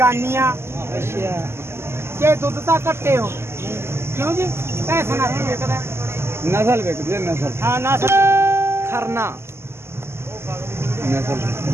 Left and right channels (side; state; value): left; late; 0.12 ms